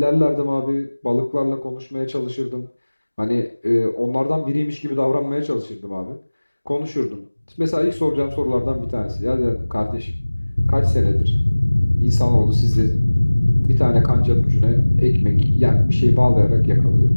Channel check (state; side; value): inverted; both; correlation -1.00